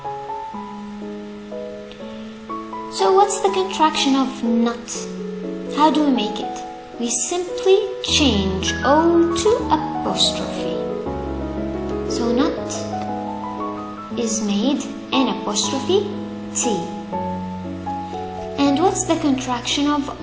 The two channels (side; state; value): both; identical; correlation 1.00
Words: So what's the contraction of not? How do we make it? We simply change O to apostrophe. So not is made N apostrophe T. And what's the contraction of